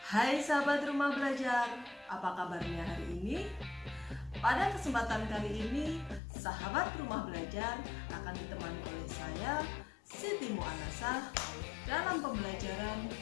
Hai sahabat rumah belajar, apa kabarnya hari ini? Pada kesempatan kali ini, sahabat rumah belajar akan ditemani oleh saya, Siti Mu'anasah, dalam pembelajaran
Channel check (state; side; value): drops out; right; at 6.2 s